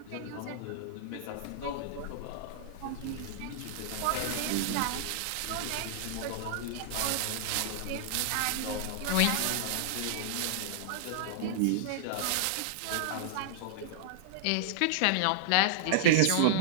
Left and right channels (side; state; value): both; different; correlation -0.01